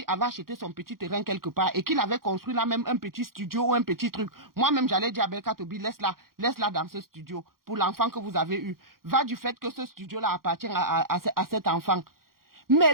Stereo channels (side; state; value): left; late; 0.92 ms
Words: avait acheté son petit terrain quelque part et qu'il avait construit là même un petit studio ou un petit truc, moi-même j'allais dire à Belka Tobi, laisse-la dans ce studio pour l'enfant que vous avez eu. Va du fait que ce studio-là appartient à cet enfant. Mais